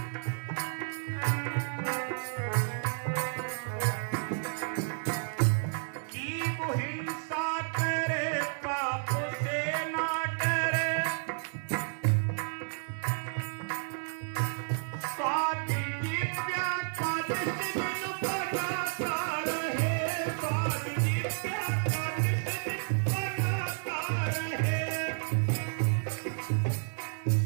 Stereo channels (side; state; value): left; silent; 57 dB below the other